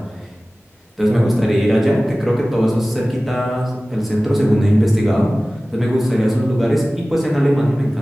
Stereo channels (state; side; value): normal; both; correlation 0.97